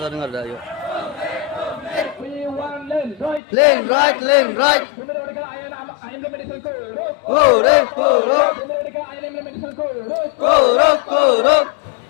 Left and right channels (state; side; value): drops out; right; at 3.4 s